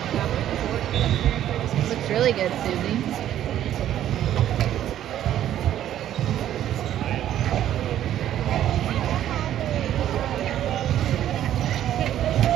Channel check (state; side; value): quieter; left; 11.6 dB